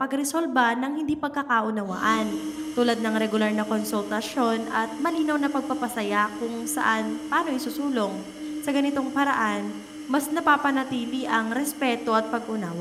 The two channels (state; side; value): identical; both; correlation 1.00